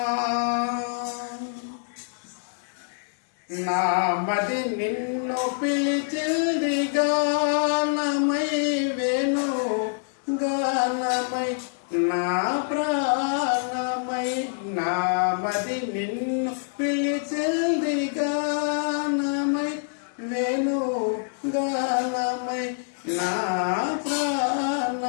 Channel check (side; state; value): right; silent; digital silence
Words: నా మది నిన్ను పిలిచింది గానమై వేణు గానమై నా ప్రాణమై నా మది నిన్ను పిలిచింది గానమై వేణు గానమై నా